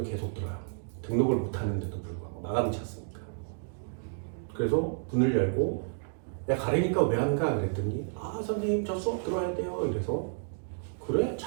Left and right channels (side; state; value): left; silent; digital silence